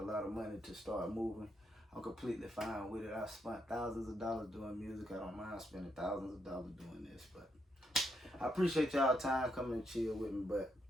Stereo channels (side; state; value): both; normal; correlation 0.78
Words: lot of money to start moving. I'm completely fine with it. I've spent thousands of dollars doing music. I don't mind spending thousands of dollars doing this, but I appreciate y'all time coming and chill with me, but